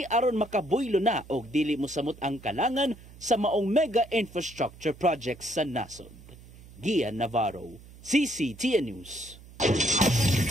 aron makabuylo na og dili mosamot ang kalangan sa maong mega infrastructure projects sa nasod. Gian Navarro, CCTN News.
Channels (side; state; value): right; noise; hum, 20 dB below the sound